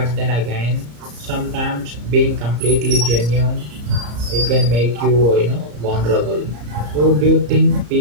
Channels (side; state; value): left; late; 34 ms